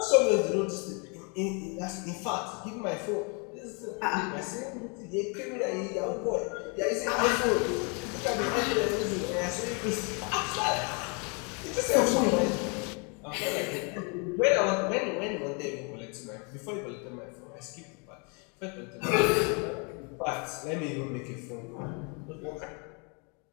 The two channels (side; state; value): right; quieter; 34.6 dB